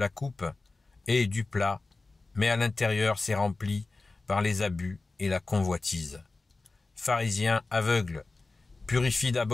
coupe et du plat, mais à l'intérieur c'est rempli par les abus et la convoitise. Pharisiens aveugles, purifie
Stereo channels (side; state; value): right; quieter; 3.5 dB